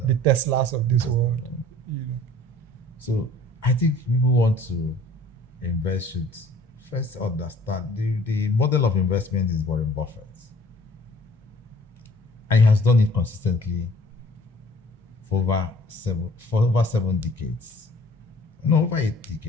The Teslas of this world. So I think people want to invest should first understand the model of investment is Warren Buffett. And he has done it consistently for over 7 decades. No, over 8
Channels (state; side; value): normal; both; correlation 0.51